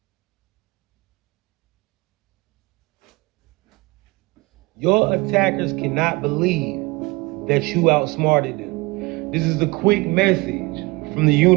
Your attackers cannot believe that you outsmarted them. This is a quick message from the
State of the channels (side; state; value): left; quieter; 23.7 dB